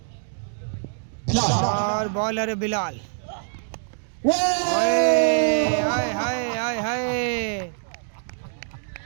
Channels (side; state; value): left; silent; digital silence